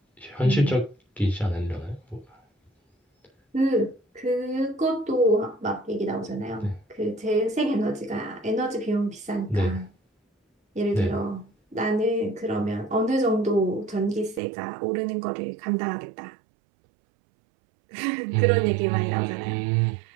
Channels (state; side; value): drops out; left; at 14.4 s